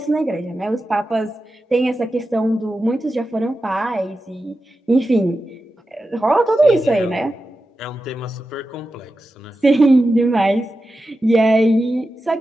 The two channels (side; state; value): both; normal; correlation 0.91